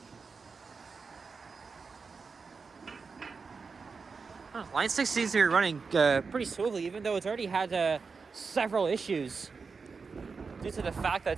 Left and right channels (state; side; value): quieter; left; 4.9 dB